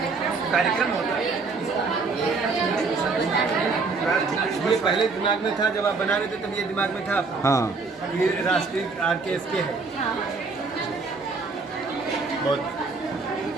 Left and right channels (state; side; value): quieter; left; 4.2 dB